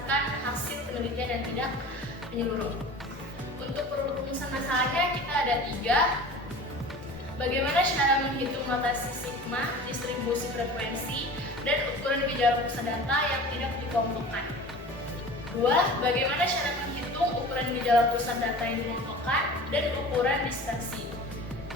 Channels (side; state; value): both; normal; correlation 0.38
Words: hasil penelitian dan tidak menyeluruh. Untuk perumusan masalahnya kita ada 3. Bagaimana cara menghitung notasi sigma, distribusi frekuensi, dan ukuran gejala pusat data yang tidak dikelompokkan. 2. Bagaimana cara menghitung ukuran gejala pusat data yang dikelompokkan dan ukuran dispersi.